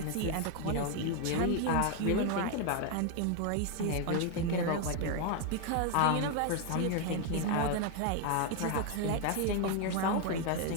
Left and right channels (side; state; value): both; different; correlation 0.01